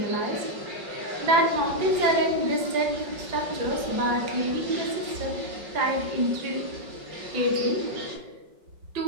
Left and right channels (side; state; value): left; late; 5.3 ms